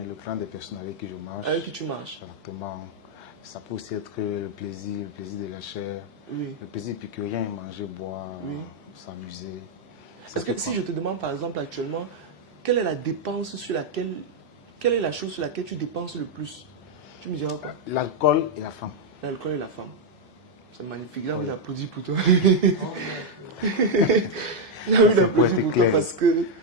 clan des personnes avec qui je marche. Avec qui tu marches. Exactement. Ça peut aussi être le plaisir de la chair. Oui. Le plaisir épicurien, manger, boire, oui. s'amuser. Est-ce que si je te demande par exemple actuellement, quelle est la dépense sur laquelle, quelle est la chose sur laquelle tu dépenses le plus? Tu me diras quoi? L'alcool et la femme. L'alcool et la femme. C'est magnifique, j'ai envie d'applaudir pour toi. J'ai envie d'applaudir pour toi parce que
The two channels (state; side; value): normal; both; correlation 0.00